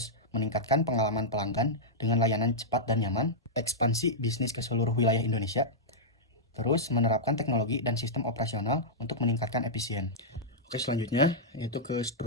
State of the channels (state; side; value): normal; both; correlation -0.09